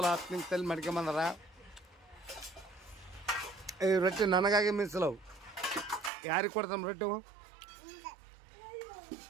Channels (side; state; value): left; drops out; at 6.1 s